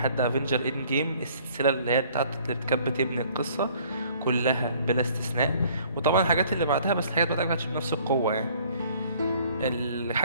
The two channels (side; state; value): both; inverted; correlation -0.57